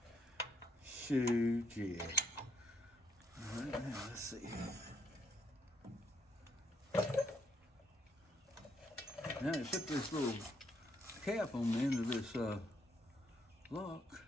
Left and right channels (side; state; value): both; normal; correlation 0.74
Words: Shoot, yeah. All right, now let's see. Now you put this little cap on the end of this lock.